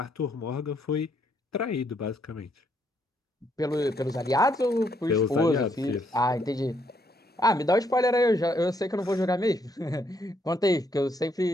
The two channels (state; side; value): normal; both; correlation 0.73